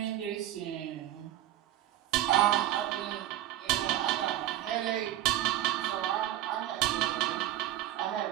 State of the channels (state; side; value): quieter; left; 13.2 dB